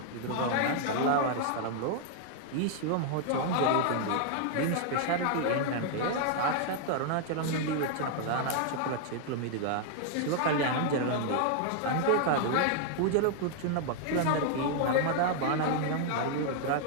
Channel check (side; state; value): both; different; correlation 0.00